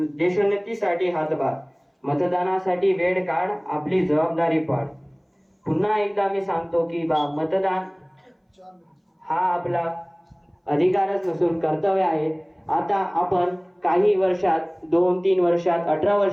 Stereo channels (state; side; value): identical; both; correlation 1.00